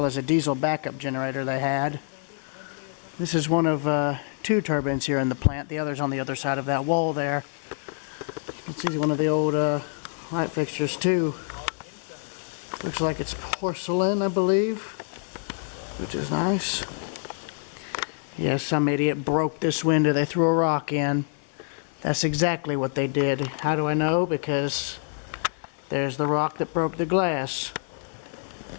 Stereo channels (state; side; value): silent; right; 61 dB below the other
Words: as a diesel backup generator they had. This is one of two turbines here in the plant. The other's on the other side of that wall there. This is one of the old light fixtures too. Looks like it's porcelain, I believe, which is nice. Yeah, some idiot broke this window. They threw a rock in. That's exactly what they did. How do I know? Because there's the rock that broke the glass.